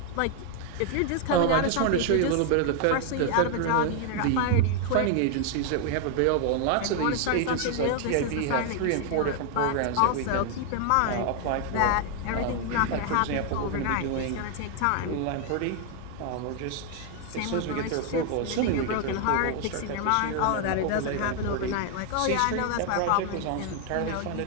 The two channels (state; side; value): different; both; correlation 0.00